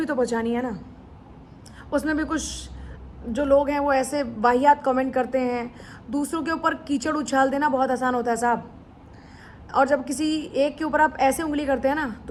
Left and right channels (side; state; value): both; identical; correlation 1.00